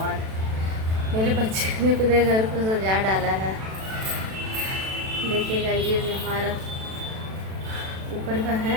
मेरे बच्चे ने पूरे घर को सजा डाला है। देखिएगा, ये जो हमारा ऊपर का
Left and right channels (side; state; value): left; late; 36 ms